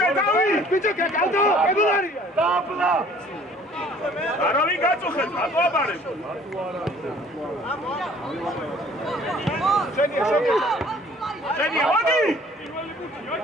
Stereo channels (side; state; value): both; normal; correlation 0.54